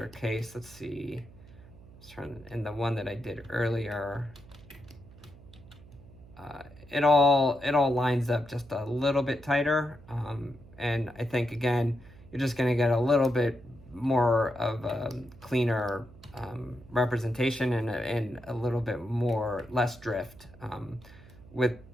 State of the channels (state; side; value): noise; right; hum, 21 dB below the sound